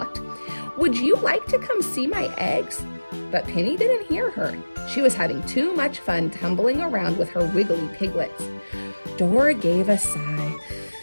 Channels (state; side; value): inverted; both; correlation -1.00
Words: "Would you like to come see my eggs?" But Penny didn't hear her. She was having too much fun tumbling around with her wiggly piglets. Dora gave a sigh.